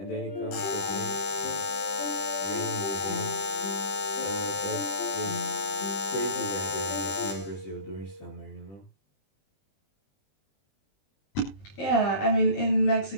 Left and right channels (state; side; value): late; right; 20 ms